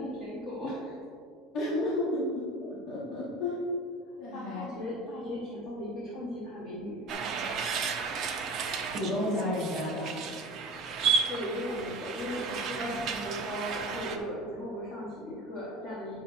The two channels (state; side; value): normal; both; correlation 0.37